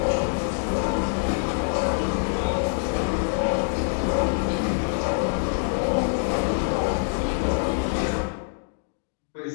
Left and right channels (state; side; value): silent; right; digital silence